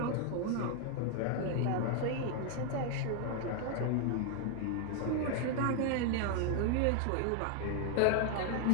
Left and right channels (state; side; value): different; both; correlation 0.00